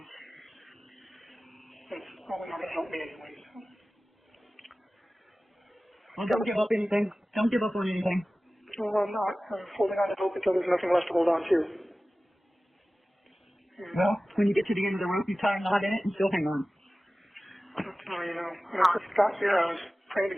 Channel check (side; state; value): both; normal; correlation 0.97